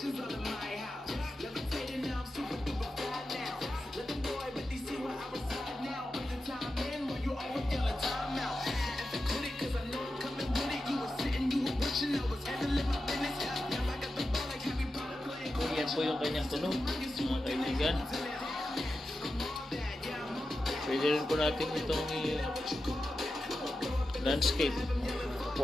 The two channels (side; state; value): both; normal; correlation 0.91